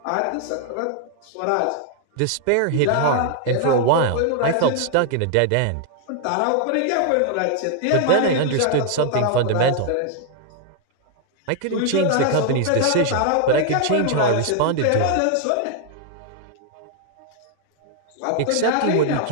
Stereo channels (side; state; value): both; different; correlation 0.00